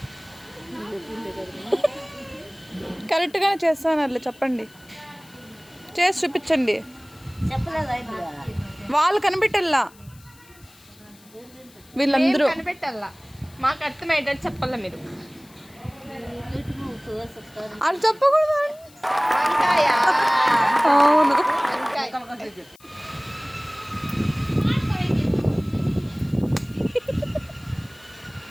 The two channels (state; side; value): noise; left; hiss, 26 dB below the sound